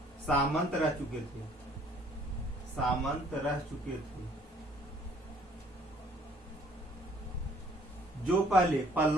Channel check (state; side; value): normal; both; correlation 0.60